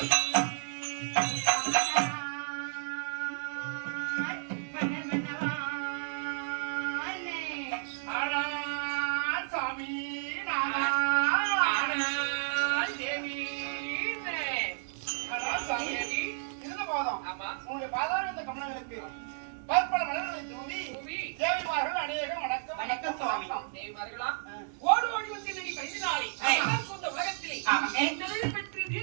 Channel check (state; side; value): silent; left; digital silence